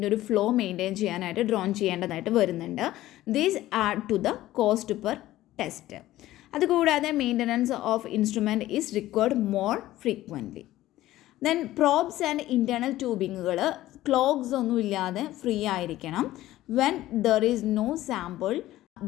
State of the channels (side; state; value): right; quieter; 15.3 dB